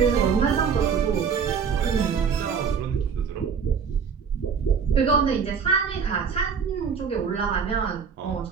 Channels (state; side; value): quieter; left; 6.5 dB